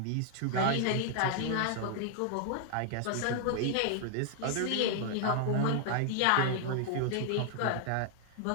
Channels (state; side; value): different; both; correlation 0.00